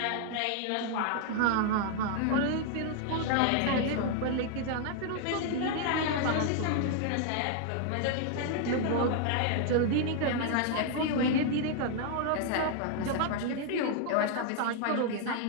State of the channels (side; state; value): both; different; correlation 0.00